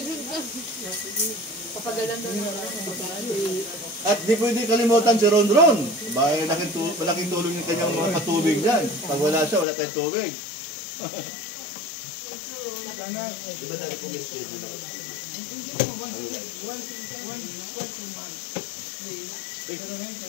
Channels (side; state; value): right; drops out; at 9.7 s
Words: Papagalan doon. At di pwede kalimutan si Ron Ron. Bakit malaking tulong yung kanyang mga patubig dyan. Pag wala siya, wala tayong tubig. Diba dali kong